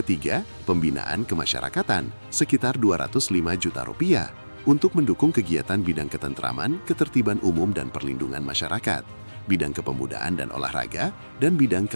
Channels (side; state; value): both; inverted; correlation -1.00